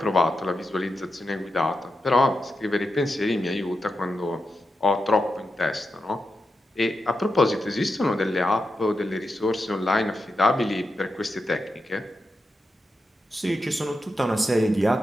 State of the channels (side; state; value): both; normal; correlation 0.88